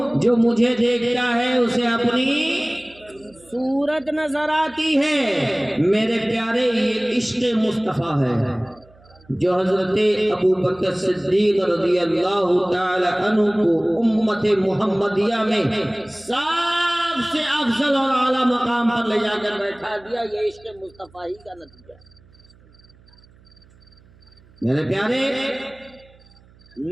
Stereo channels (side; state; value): right; noise; hum, 28 dB below the sound